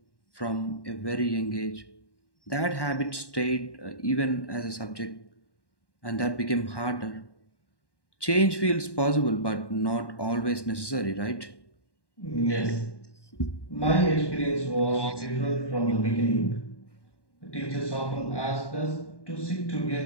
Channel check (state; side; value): late; right; 1.1 ms